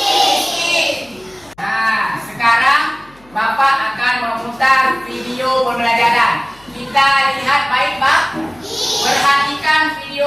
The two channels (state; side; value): noise; left; hum, 29 dB below the sound